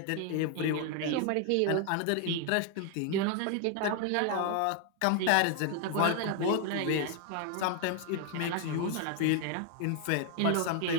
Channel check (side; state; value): both; different; correlation 0.01